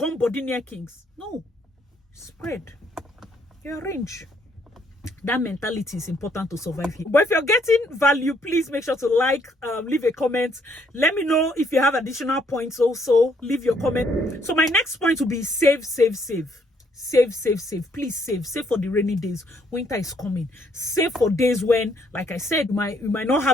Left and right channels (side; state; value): both; normal; correlation 0.69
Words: body near kings? No. Spread. You arrange. That mentality is important to survive here. But if you're getting value, please make sure to like, leave a comment. Let me know if you have additional points also. Leave your comment. So my next point will be save, save, save. Save, save, save. Please save. Save for the rainy days. Winter is coming. Save for days when, like I said, you might not